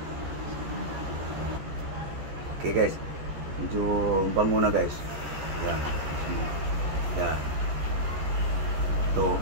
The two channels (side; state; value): left; late; 14 ms